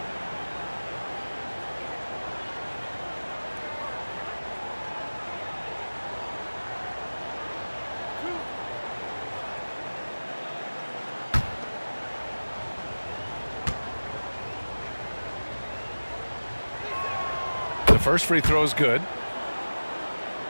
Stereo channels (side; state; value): both; inverted; correlation -1.00